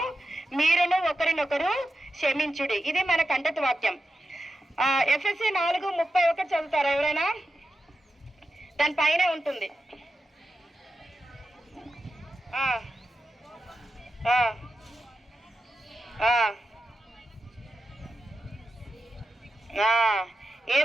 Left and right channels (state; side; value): normal; both; correlation 0.90